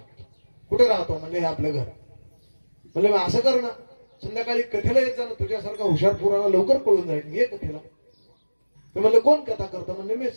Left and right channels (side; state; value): both; inverted; correlation -1.00